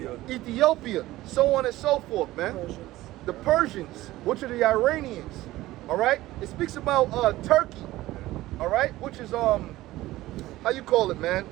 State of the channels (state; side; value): quieter; left; 16.8 dB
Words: Ethiopia, so on and so forth, man. The Persians, which are the Iranians, all right? It speaks about Turkey, all right? Which is, how you call it, man?